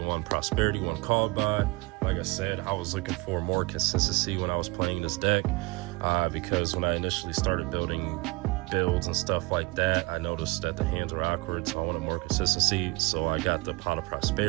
Prosperity, 1 Called By. Like I said, I was looking for more consistency when I was playing this deck, because when I initially started building builds and stuff like that, I noticed that the hands were awkward, so I wanted more consistency. So I got the Pot of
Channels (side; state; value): left; quieter; 24.8 dB